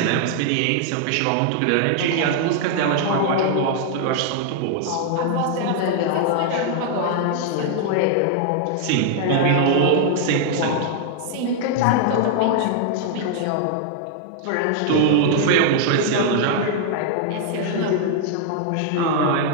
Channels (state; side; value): different; both; correlation 0.00